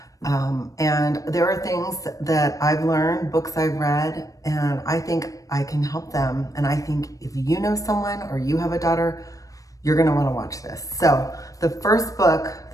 And there are things that I've learned, books I've read, and I think I can help them. And I think if you know someone or you have a daughter, you're going to want to watch this. So the first book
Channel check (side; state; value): right; late; 0.16 ms